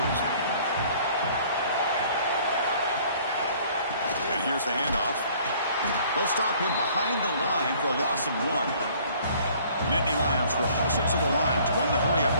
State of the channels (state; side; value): inverted; both; correlation -0.56